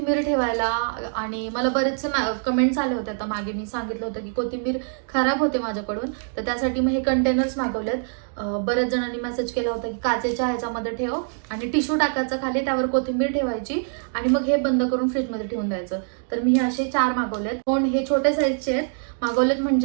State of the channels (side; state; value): left; silent; digital silence